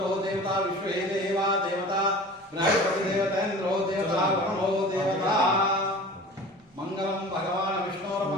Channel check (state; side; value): normal; both; correlation 0.40